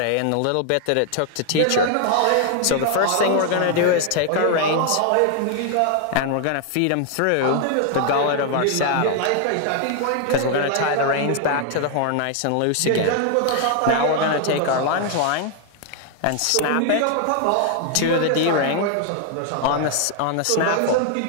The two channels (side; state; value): both; different; correlation 0.00